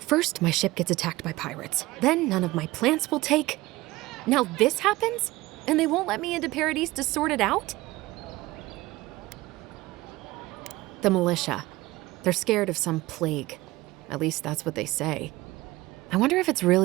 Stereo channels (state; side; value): quieter; left; 19.2 dB